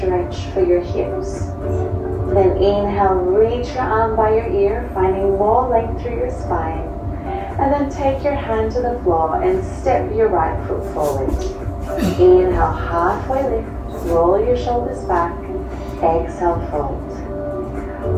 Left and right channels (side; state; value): both; identical; correlation 1.00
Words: for your hips. Then inhale, reach your arm by your ear, finding more length through your spine. And then take your hand to the floor and step your right foot forward. Inhale, halfway lift, roll your shoulders back, exhale, fold.